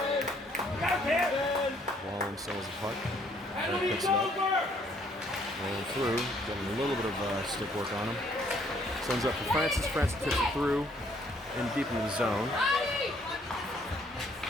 Wallen sells the puck. Picks it up. Rolling through. Getting a little bit of stick work on him. Sends up to Francis. Francis tips it through and deep into the zone.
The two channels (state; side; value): normal; both; correlation 0.65